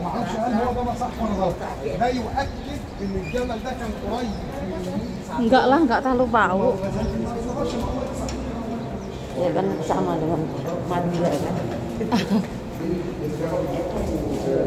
ما اعرفش هل هو ده صح ولا غلط. ده يؤكد ان الجبل ده كان قريب Enggak lah, enggak terlalu bau. Ya kan sama dengan Madura kan.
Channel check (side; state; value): both; identical; correlation 1.00